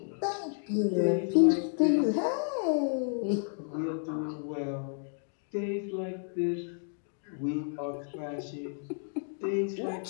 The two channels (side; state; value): right; silent; digital silence